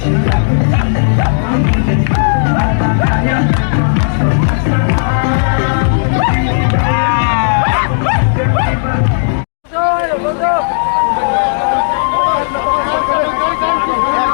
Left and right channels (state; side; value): silent; right; digital silence